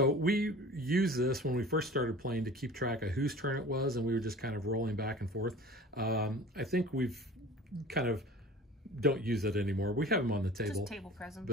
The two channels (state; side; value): normal; both; correlation 0.42